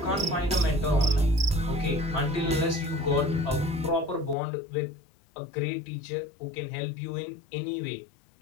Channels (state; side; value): drops out; right; at 4.4 s